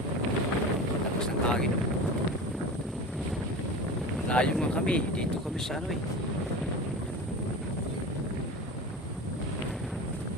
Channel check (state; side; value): normal; both; correlation 0.31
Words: Tapos ng hangin. Layo nga kami. Dito kami sa ano eh.